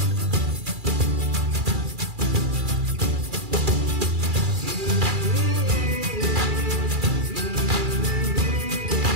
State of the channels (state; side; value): late; left; 2.4 ms